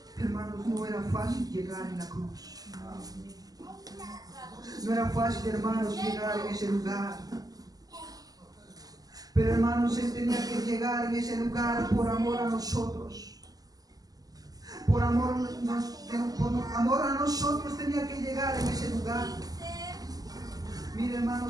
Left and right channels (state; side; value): late; left; 0.18 ms